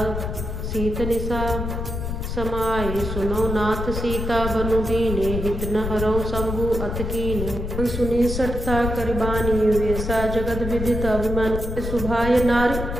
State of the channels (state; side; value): noise; left; rumble, 4 dB below the sound